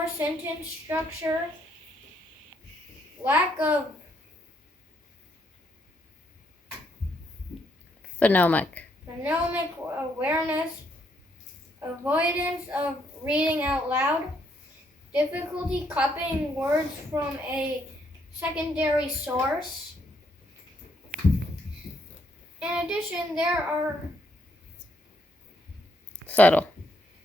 sentence structure, lack of phonemic awareness, avoidance of reading out loud, difficulty copying words from a secondary source. In addition, there are subtle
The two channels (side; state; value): both; normal; correlation 0.73